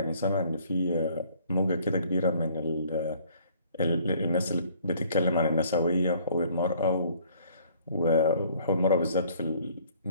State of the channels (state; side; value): inverted; both; correlation -0.58